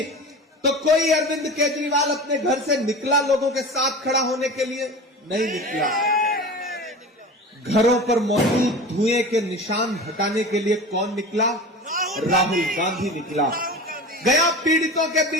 तो कोई अरविंद केजरीवाल अपने घर से निकला लोगों के साथ खड़ा होने के लिए? नहीं निकला। घरों पर मौजूद धुएं के निशान हटाने के लिए कौन निकला? राहुल गांधी निकला। गया पीड़ितों के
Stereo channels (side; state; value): both; normal; correlation 0.33